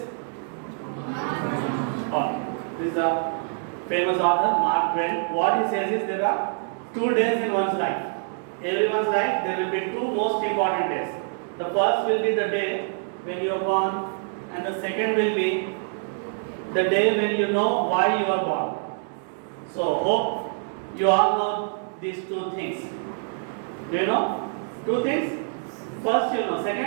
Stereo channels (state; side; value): silent; left; 61 dB below the other